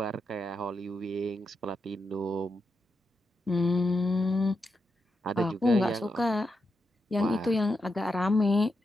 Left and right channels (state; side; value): normal; both; correlation 0.85